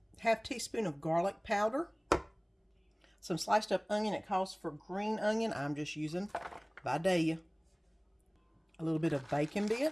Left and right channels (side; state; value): both; identical; correlation 1.00